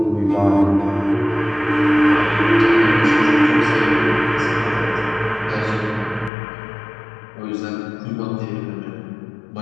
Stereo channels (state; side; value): drops out; right; at 6.3 s